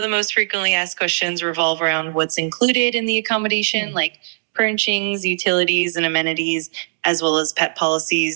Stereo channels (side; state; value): left; silent; digital silence